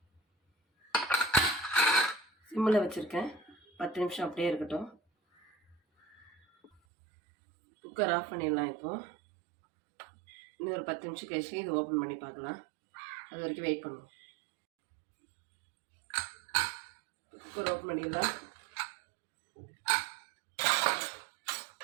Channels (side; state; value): left; drops out; at 6.7 s